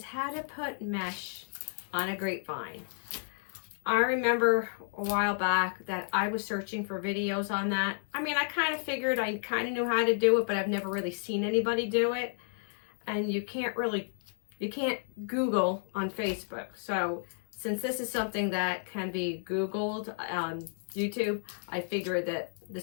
how to put mesh on a grapevine. I remember a while back that I was searching for videos on that. I mean, I kind of figured I kind of knew how to do it, but I've never really seen anybody do it. And you can't Google on Facebook. So since this is something that can be Googled on YouTube, I figured that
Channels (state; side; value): silent; right; digital silence